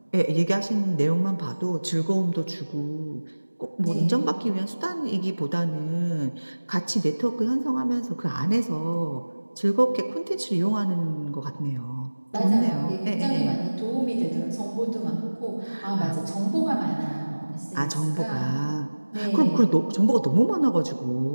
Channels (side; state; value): both; inverted; correlation -1.00